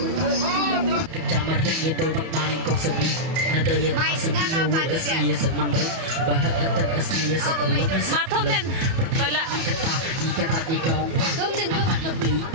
Kecamar yang itu maning kong sebi nada yang sebi wo asli seman ri bahak antar asli seelang Matom nen. Bala. kata ikata ikong apa ini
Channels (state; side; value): late; left; 31 ms